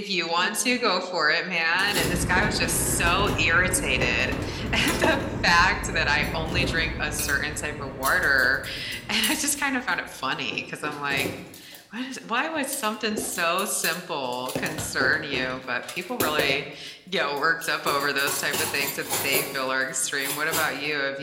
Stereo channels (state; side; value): identical; both; correlation 1.00